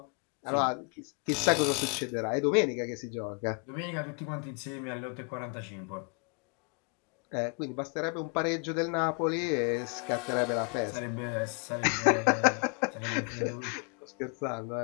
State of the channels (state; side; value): quieter; right; 36.0 dB